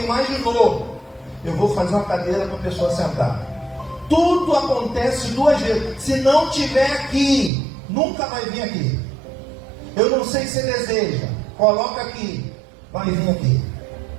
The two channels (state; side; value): drops out; left; at 7.5 s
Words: imaginou: eu vou fazer uma cadeira para a pessoa sentar. Tudo acontece duas vezes. Se não tiver aqui, nunca vai vir aqui. Eu não sei se você deseja, coloca aqui, vai vir aqui.